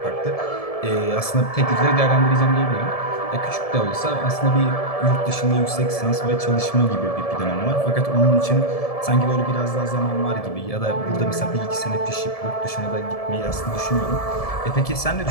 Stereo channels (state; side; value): late; right; 1.7 ms